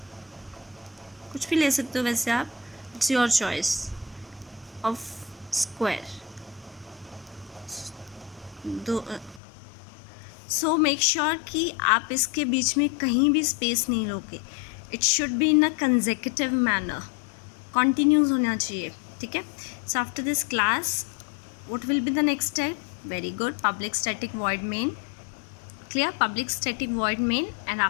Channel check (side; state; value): right; drops out; at 9.4 s